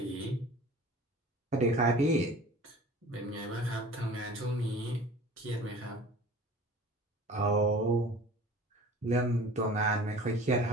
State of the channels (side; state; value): both; normal; correlation 0.43